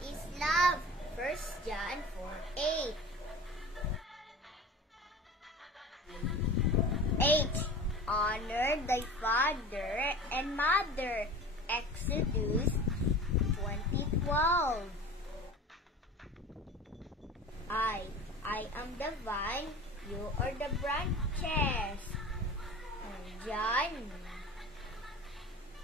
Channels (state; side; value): normal; both; correlation 0.37